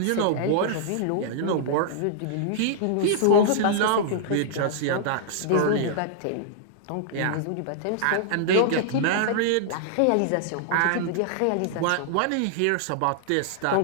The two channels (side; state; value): both; different; correlation -0.01